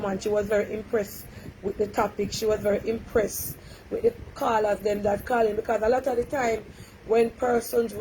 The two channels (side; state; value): both; identical; correlation 1.00